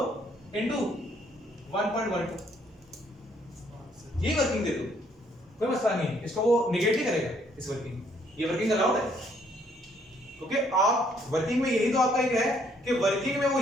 into 1.12 ये वर्किंग दे दो, कोई मसला नहीं है। इसको वो निगेट ही करेगा इस वर्किंग, ये वर्किंग अलाउड है, क्योंकि आप वर्किंग में यही तो आपका एक है कि वर्किंग में वो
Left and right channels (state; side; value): normal; both; correlation 0.67